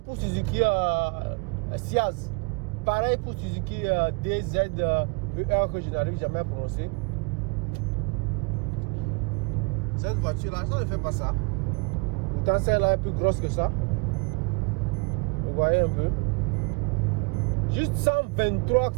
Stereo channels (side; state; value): left; quieter; 30.9 dB